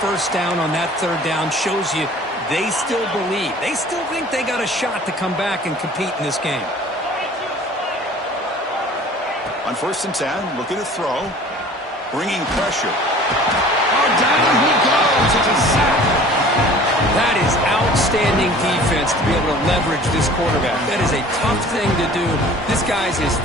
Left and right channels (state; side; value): normal; both; correlation 0.47